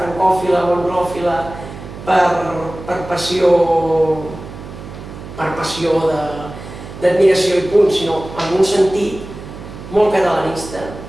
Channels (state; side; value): noise; right; hum, 13 dB below the sound